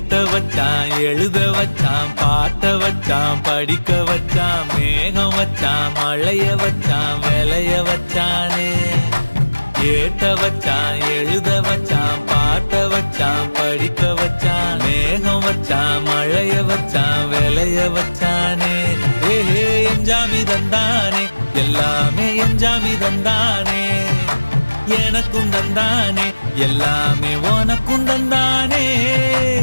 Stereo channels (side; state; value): both; inverted; correlation -1.00